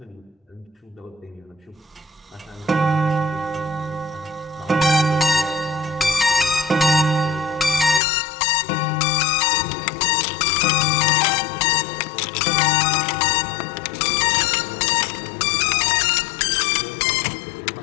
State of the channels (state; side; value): drops out; right; at 8.0 s